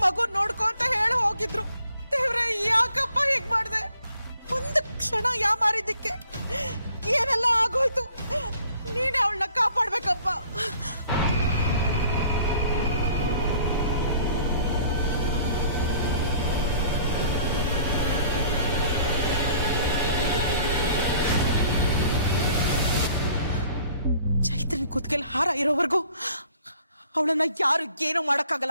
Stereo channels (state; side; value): inverted; both; correlation -0.56